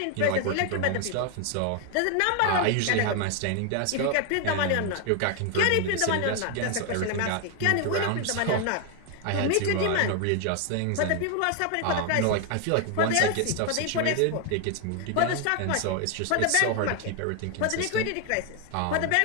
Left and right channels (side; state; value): both; different; correlation 0.00